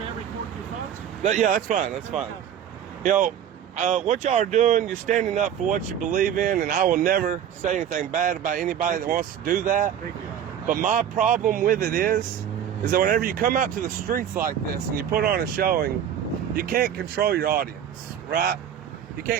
I record your thoughts? Yeah, that's fine. That's fine. You know, what y'all are doing, you're standing up for what you believe in, and I will never say anything bad about anybody that wants to do that. Thank you. But my problem with it is that whenever you come out to the streets like this and you put on a showing, you can't control your audience, right? You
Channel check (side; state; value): left; quieter; 9.4 dB